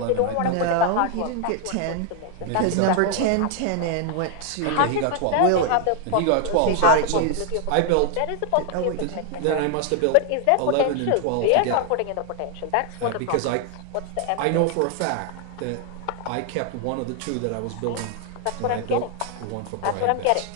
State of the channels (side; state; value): both; different; correlation 0.00